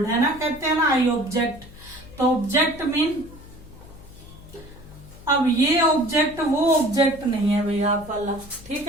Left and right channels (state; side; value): noise; left; hum, 19 dB below the sound